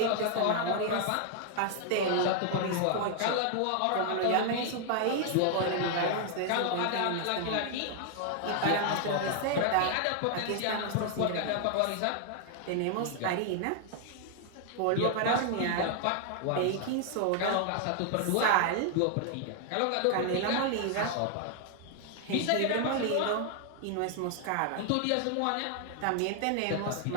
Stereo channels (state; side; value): different; both; correlation 0.00